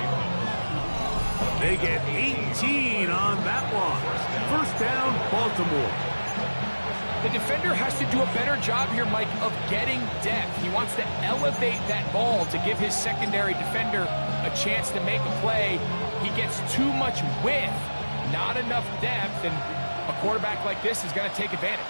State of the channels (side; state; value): both; inverted; correlation -1.00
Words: They get 18 on that one. 1st down, Baltimore. The defender has to do a better job here, Mike, of getting depth. He wants to elevate that ball to give his secondary defender a chance to make a play. He gets too much width, not enough depth, and a quarterback like this is going to take